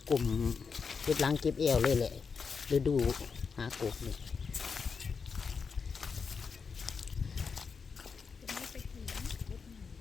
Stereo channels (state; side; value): quieter; right; 5.5 dB